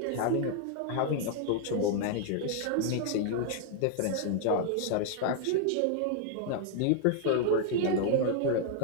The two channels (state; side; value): different; both; correlation 0.00